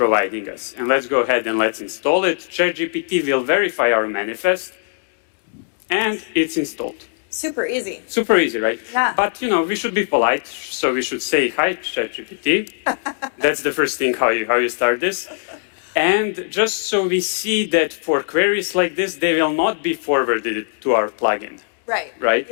us. And let's go ahead and let's install it. ChatGPT will verify our manifest, and it's installed. Super easy. Super easy, right? Yeah. But, you know, we should be polite, so we should say, hi, ChatGPT. That's the first thing, how you start this. And just so we see that for queries like this, they will not be forwarded to our plugin. Right. Right?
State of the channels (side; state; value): right; silent; digital silence